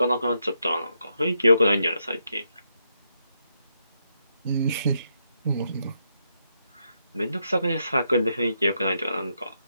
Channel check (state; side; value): inverted; both; correlation -0.79